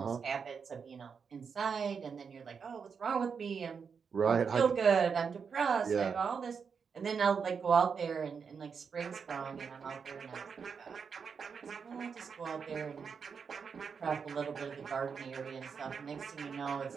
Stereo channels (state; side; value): quieter; left; 6.1 dB